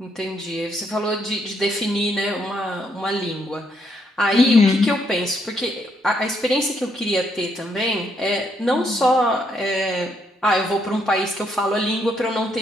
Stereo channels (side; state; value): both; normal; correlation 0.74